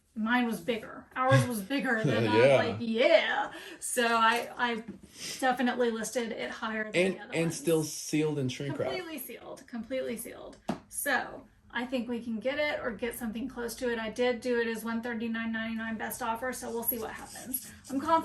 mine was bigger. Ours was bigger than I was like, yeah. So I definitely listed it higher than the other and ones. still sealed in shrink wrap. Completely sealed. So I think we can get it or get something close to it. I did do it as $139.99 best offer, so we'll see what happens. I'm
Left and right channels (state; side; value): identical; both; correlation 1.00